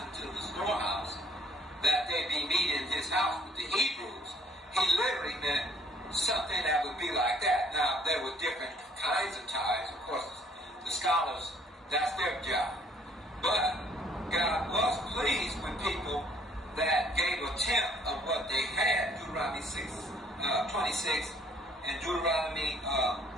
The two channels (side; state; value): both; normal; correlation 0.61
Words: into the storehouse, that they be meat in his house with the Hebrews, he literally meant something that would be like that. Now, there were different kinds of tithes. Of course, the scholars, that's their job. But God was pleased with people that gave a tenth of what they had. Deuteronomy 26 and Deuteronomy